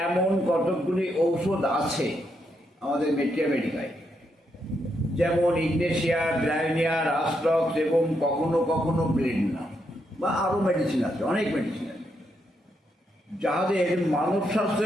এমন কতকগুলি ঔষধ আছে আমাদের মেডিকায়, যেমন ইগনেশিয়া, ব্রায়োনিয়া, রাস্টক্স এবং কখনো কখনো ব্লেডনা, বা আরও মেডিসিন আছে, অনেক মেডিসিন আছে, যাদের মানব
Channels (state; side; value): normal; both; correlation 0.80